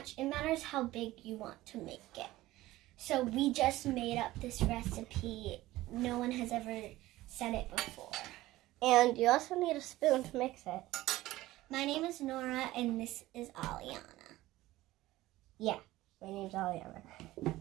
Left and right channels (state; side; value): quieter; left; 17.0 dB